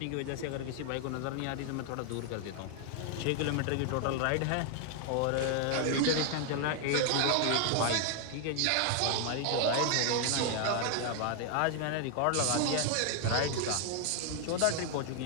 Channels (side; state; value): both; different; correlation 0.00